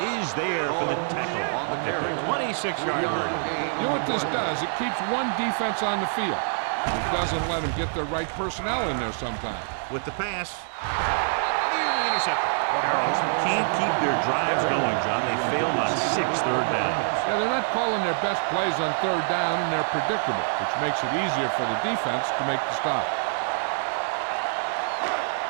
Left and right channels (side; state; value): left; silent; digital silence